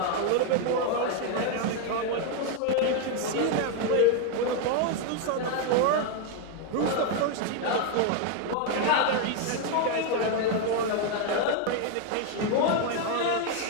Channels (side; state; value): both; different; correlation 0.01